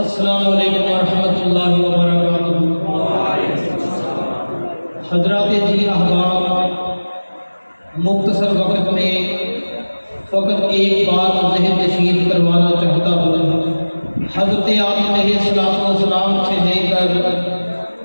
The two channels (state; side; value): inverted; both; correlation -1.00